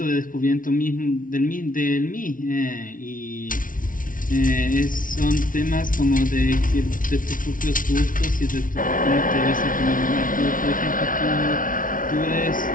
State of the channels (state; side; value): late; right; 0.39 ms